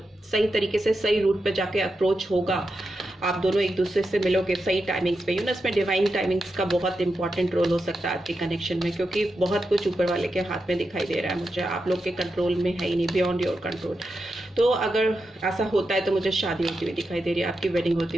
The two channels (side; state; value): both; normal; correlation 0.88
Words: सही तरीके से सही रूट पे जाके अप्रोच होगा, आप दोनों एक दूसरे से मिलोगे सही टाइमिंग्स पे, इसमें डिवाइन टाइमिंग्स का बहुत इंपॉर्टेंट रोल हो सकता है आपके कनेक्शन में, क्योंकि बहुत कुछ ऊपर वाले के हाथ में दिखाई दे रहा है मुझे, आप लोग के कंट्रोल में है ही नहीं, बियॉन्ड योर कंट्रोल। तो अगर ऐसा होता है तो मुझे शादी होती हुई दिखाई दे रही है, आपकी वेडिंग होती